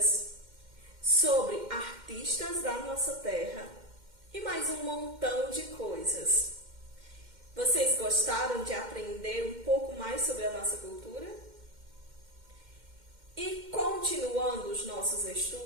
sobre artistas da nossa terra e mais um montão de coisas. Vocês gostaram de aprender um pouco mais sobre a nossa cultura? E continuando os nossos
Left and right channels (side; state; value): left; late; 2.1 ms